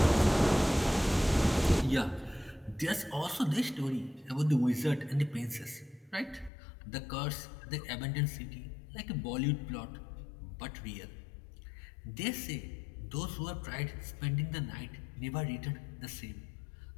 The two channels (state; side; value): drops out; right; at 6.5 s